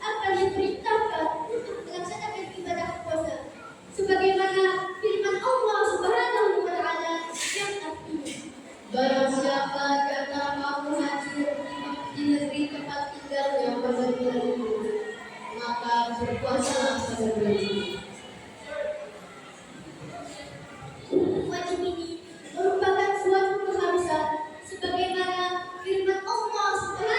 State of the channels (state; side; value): identical; both; correlation 1.00